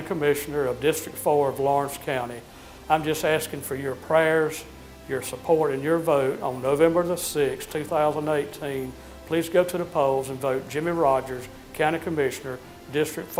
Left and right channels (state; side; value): identical; both; correlation 1.00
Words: Commissioner of District 4 of Lawrence County. I'm just asking for your prayers, your support, and your vote on November the 6th, 2018. Please go to the polls and vote Jimmy Rogers, County Commissioner, District